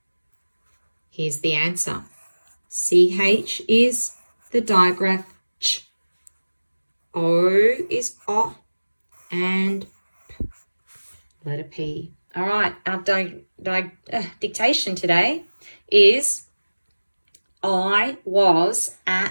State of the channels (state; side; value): inverted; both; correlation -1.00